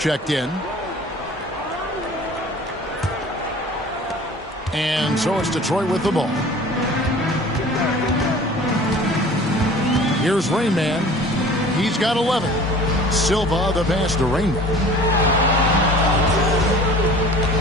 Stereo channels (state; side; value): normal; both; correlation 0.45